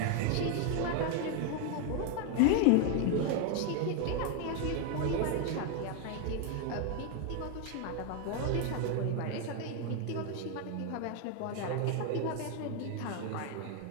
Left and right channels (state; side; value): different; both; correlation 0.01